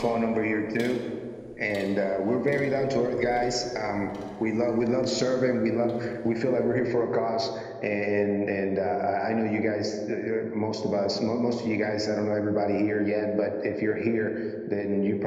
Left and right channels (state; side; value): identical; both; correlation 1.00